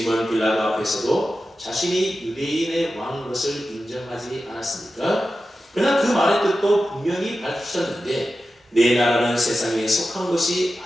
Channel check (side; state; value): both; normal; correlation 0.92